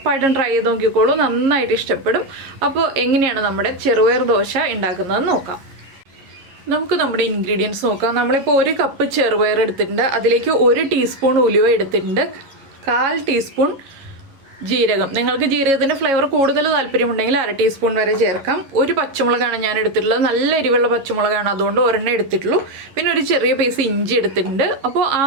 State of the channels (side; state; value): left; late; 11 ms